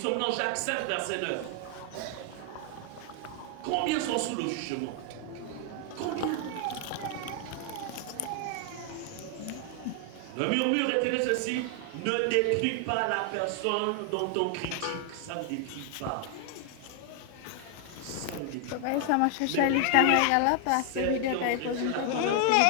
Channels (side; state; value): both; different; correlation 0.00